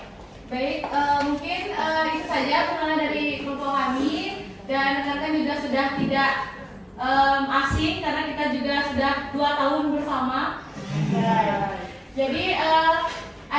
Baik, mungkin itu saja perkenalan dari kelompok kami dan rekan-rekan juga sudah tidak asing karena kita juga sudah 2 tahun bersama. Jadi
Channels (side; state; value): both; identical; correlation 1.00